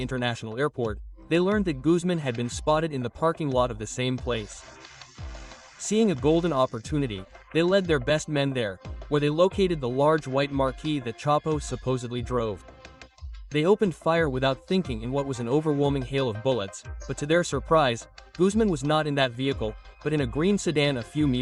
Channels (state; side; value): identical; both; correlation 1.00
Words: Airport, they learned that Guzmán had been spotted in the parking lot of the same place. Seeing a golden opportunity, they led their best men there, where they located the large white Marquis that Chapo supposedly drove. They opened fire without thinking in what was an overwhelming hail of bullets, but to their surprise, Guzmán was not in that vehicle, but in a green sedan a few